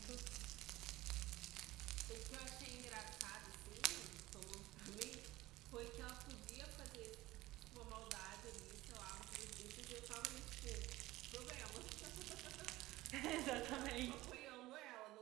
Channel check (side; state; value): left; quieter; 17.9 dB